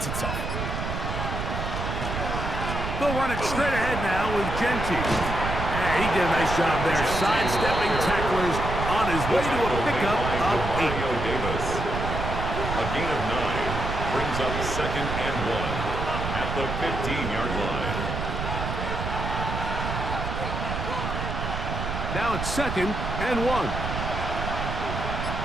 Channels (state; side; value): noise; right; rumble, 4 dB below the sound